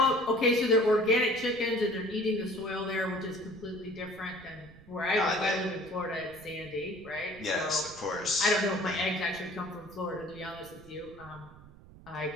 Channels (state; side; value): noise; right; rumble, 20 dB below the sound